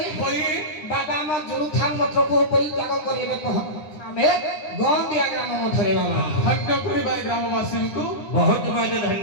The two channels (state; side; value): late; right; 9.9 ms